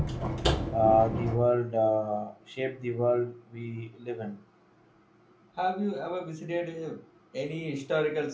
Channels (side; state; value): both; identical; correlation 1.00